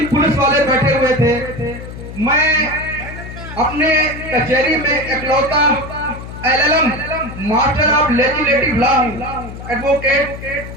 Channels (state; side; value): noise; left; hum, 11 dB below the sound